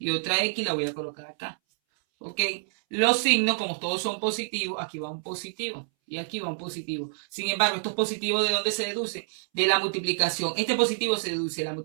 otra x la voy a colocar acá. Ok. Los signos, como todos son positivos, aquí va un positivo. Y aquí va un positivo. Sin embargo, estos positivos, ¿de dónde se deduce? De la multiplicación. Este positivo se deduce de la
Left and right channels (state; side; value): silent; left; 60 dB below the other